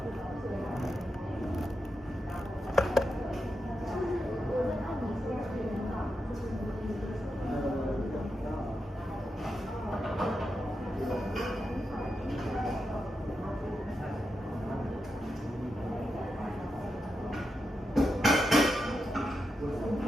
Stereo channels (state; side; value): normal; both; correlation 0.87